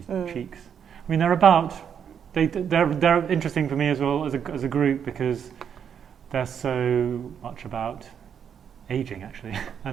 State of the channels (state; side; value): quieter; left; 8.0 dB